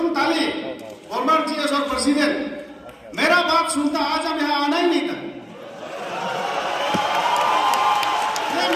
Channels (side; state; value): both; identical; correlation 1.00